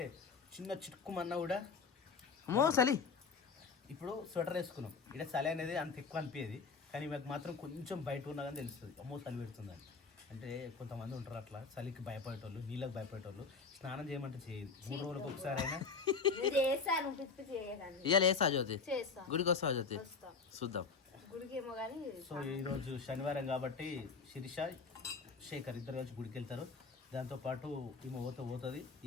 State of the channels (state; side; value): quieter; right; 4.9 dB